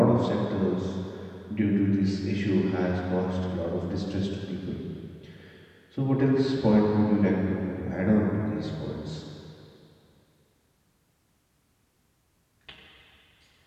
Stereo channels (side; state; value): both; identical; correlation 1.00